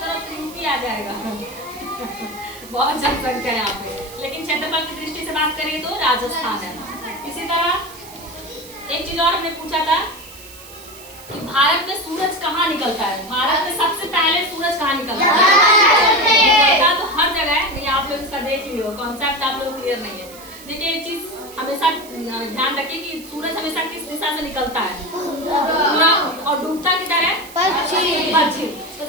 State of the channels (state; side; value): noise; right; hiss, 18 dB below the sound